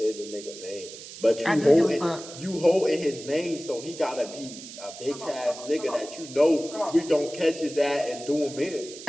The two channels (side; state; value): right; noise; hiss, 14 dB below the sound